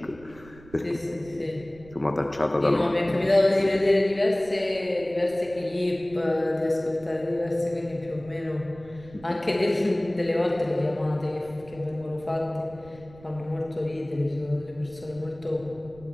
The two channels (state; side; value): noise; right; rumble, 21 dB below the sound